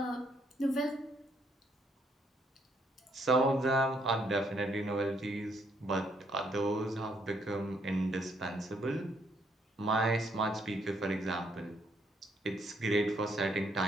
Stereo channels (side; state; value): both; normal; correlation 0.71